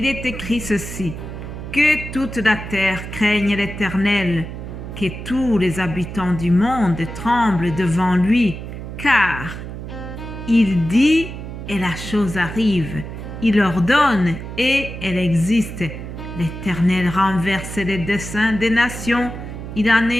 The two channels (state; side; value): noise; right; hum, 9 dB below the sound